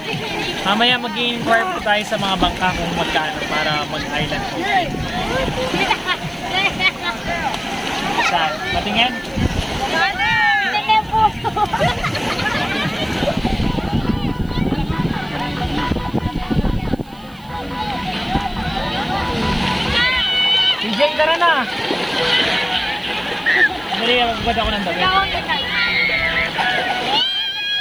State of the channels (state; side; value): noise; right; hiss, 29 dB below the sound